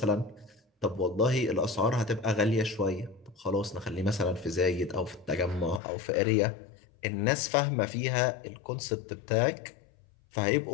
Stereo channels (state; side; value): drops out; right; at 5.8 s